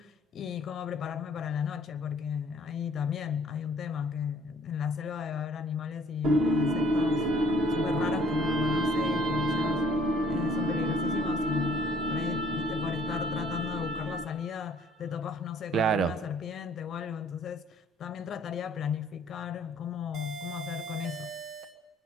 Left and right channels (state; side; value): normal; both; correlation 0.58